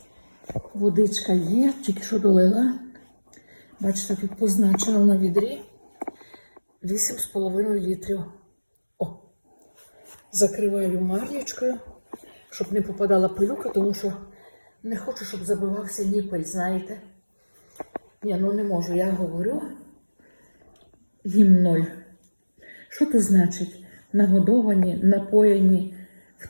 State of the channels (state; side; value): inverted; both; correlation -1.00